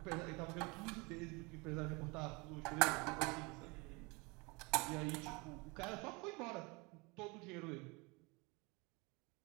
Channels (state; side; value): quieter; left; 27.5 dB